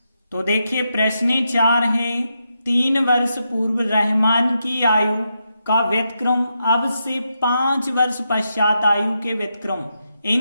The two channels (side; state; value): both; inverted; correlation -0.84